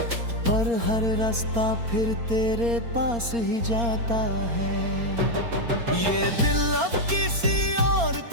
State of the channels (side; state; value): left; late; 4.3 ms